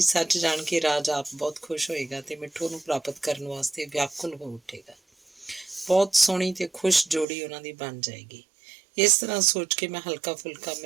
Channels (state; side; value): drops out; left; at 7.2 s